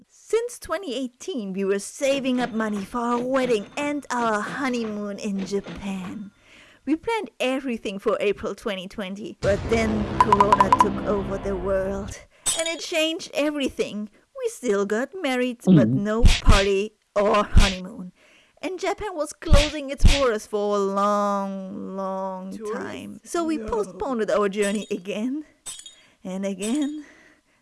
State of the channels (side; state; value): both; identical; correlation 1.00